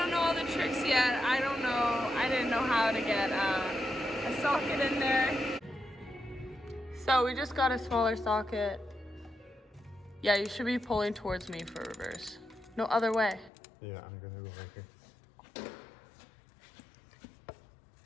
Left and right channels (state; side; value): drops out; right; at 13.5 s